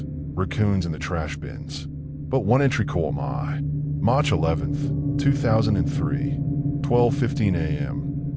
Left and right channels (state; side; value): identical; both; correlation 1.00